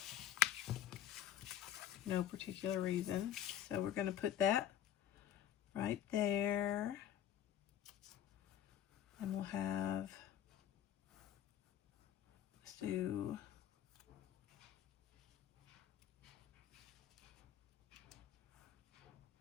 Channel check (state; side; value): quieter; right; 11.1 dB